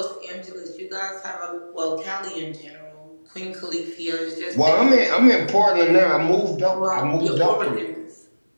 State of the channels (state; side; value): inverted; both; correlation -1.00